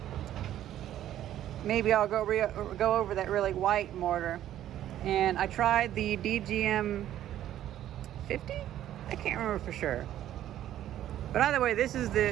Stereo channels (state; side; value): quieter; left; 12.1 dB